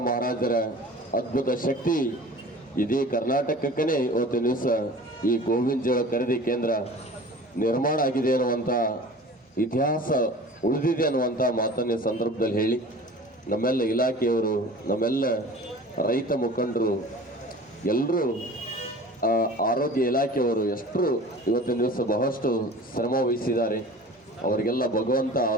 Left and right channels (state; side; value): normal; both; correlation 0.41